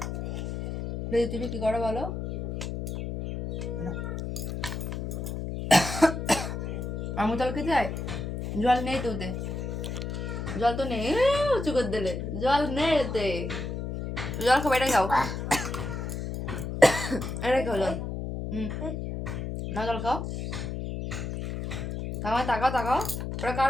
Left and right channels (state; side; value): noise; left; hum, 4 dB below the sound